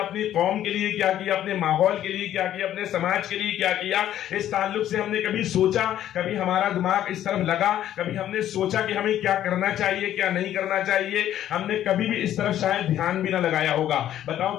قوم کے لیے کیا کیا، اپنے ماحول کے لیے کیا کیا، اپنے سماج کے لیے کیا کیا؟ اس تعلق سے ہم نے کبھی سوچا، کبھی ہمارا دماغ اس طرف لگا، کبھی ہم نے سوچا کہ ہمیں کیا کرنا چاہیے کیا نہیں کرنا چاہیے؟ ہم نے کبھی بھی اس طرف شاید دھیان بھی نہ لگایا ہوگا۔ بتاؤ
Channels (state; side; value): quieter; right; 11.7 dB